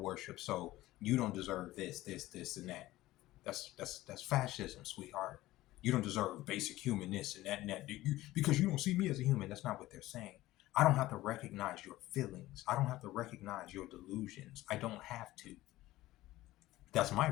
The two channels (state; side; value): quieter; right; 16.8 dB